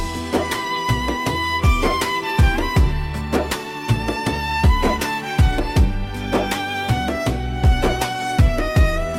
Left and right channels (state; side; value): identical; both; correlation 1.00